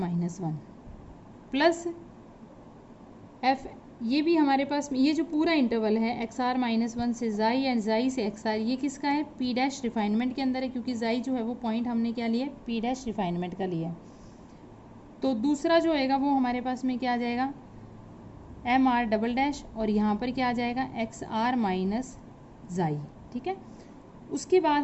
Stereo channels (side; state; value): both; identical; correlation 1.00